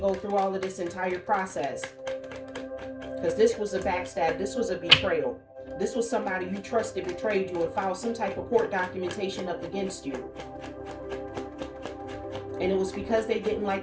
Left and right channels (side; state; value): both; identical; correlation 1.00